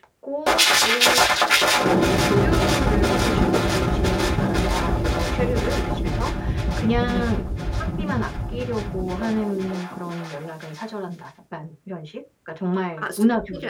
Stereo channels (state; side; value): identical; both; correlation 1.00